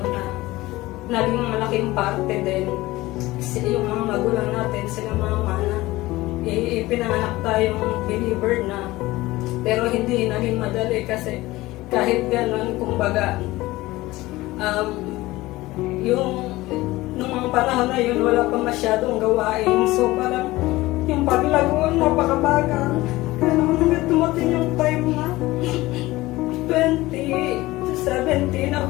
na naging malaking parte din yung mga magulang natin, sila mama na ipinanganak tayong believer na, pero hindi naging madali kasi kahit gano'n, kumbaga, nung mga panahon na yun, wala pa masyadong gawain. So, parang, yung paglagoon, napakabagal. Kaya naman hanggang tumating yung time na 2017,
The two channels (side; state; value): right; quieter; 18.8 dB